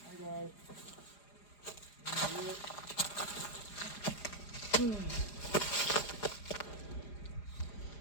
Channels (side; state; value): right; late; 4.9 ms